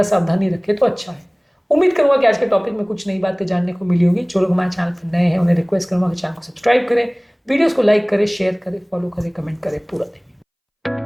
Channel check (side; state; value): both; identical; correlation 1.00